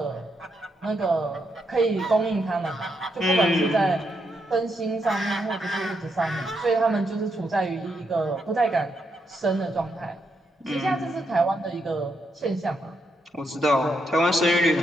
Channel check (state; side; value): normal; both; correlation 0.80